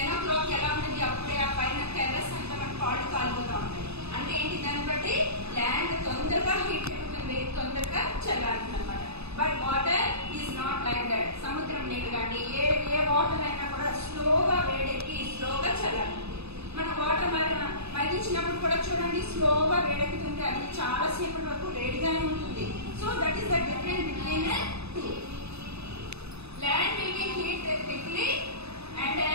o'clock ela untadi appude aa paina terrace anta man paadu kalipotha untayi. అంటే ఏంటి దాన్ని బట్టి land తొందరగా heat అవుతుంది, తొందరగా చల్లారుతుంది అనమాట. But water is not like that. సముద్రం నీళ్ళు కానీ ఏ వాటర్ అయినా కూడా స్లోగా వేడెక్కి స్లోగా చల్లారుతుంది. మన వాటర్ మరిగించినప్పుడు కూడా చూడండి స్లోగా వేడెక్కుతుంది, అది చాలా సేపటి వరకు వేడిగానే ఉంటుంది. So that is the difference between two. Land will be heat quickly and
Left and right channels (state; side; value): late; left; 0.79 ms